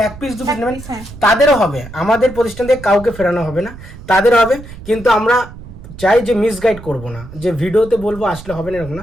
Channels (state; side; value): noise; right; rumble, 15 dB below the sound